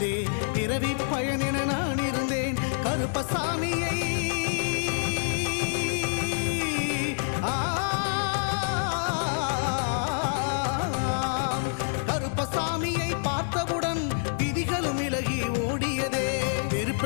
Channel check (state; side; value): silent; right; digital silence